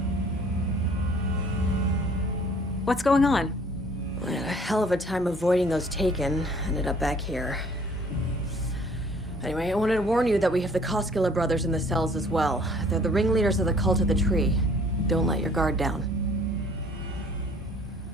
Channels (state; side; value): normal; both; correlation 0.56